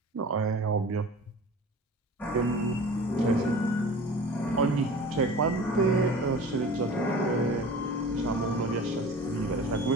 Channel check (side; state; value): both; normal; correlation 0.40